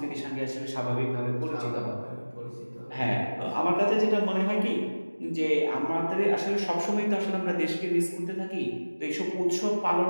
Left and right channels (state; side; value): inverted; both; correlation -1.00